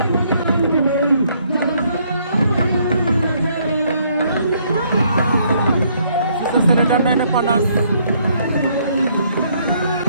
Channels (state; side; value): inverted; both; correlation -0.68